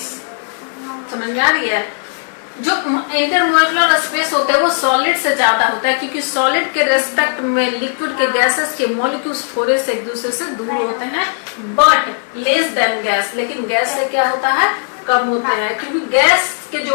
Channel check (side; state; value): right; silent; digital silence